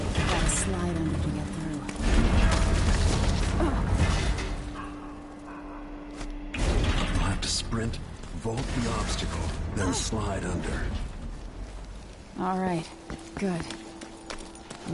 slide under to get through. You'll have to sprint, vault the obstacle, then slide under. All right, good.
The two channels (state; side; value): identical; both; correlation 1.00